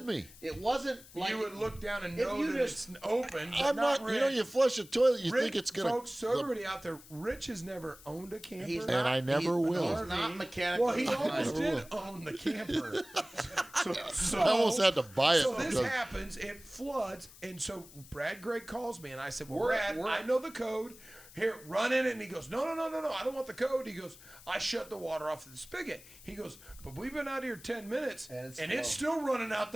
wasn't- me. It wasn't like You would look down and if know you that just- it's open. But I'm not. Rich. You flush a toilet, you Rich, think it's gonna. folks. So everybody out there, Rich has never owned a camper. He's And I never he's- will. He's not mechanical. Well, he almost Never did own the camper. So, I almost had to buy it. So this because- happens, it floods, and so Brad Gray calls me, and I said, well, We're- Brad, we're- I know the code. Here, run in it. And he goes, no, I don't want the code. He goes, I shut the water off the spigot. He goes, but we've been out here 10 minutes, And it's still running out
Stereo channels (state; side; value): noise; left; hiss, 20 dB below the sound